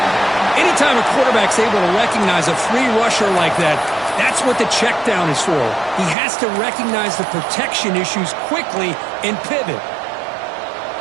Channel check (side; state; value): left; drops out; at 6.2 s